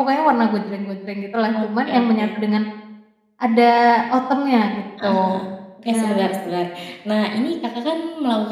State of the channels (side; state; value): both; identical; correlation 1.00